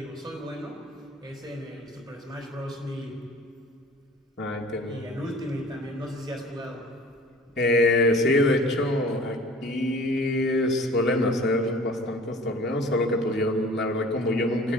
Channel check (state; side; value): normal; both; correlation 0.46